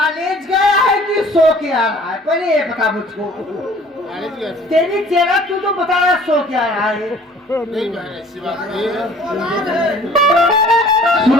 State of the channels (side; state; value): both; normal; correlation 0.52